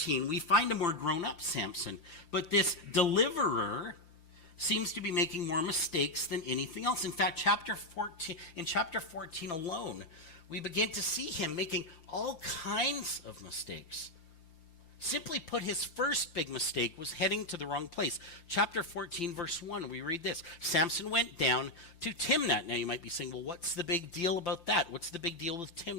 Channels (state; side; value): late; right; 5.9 ms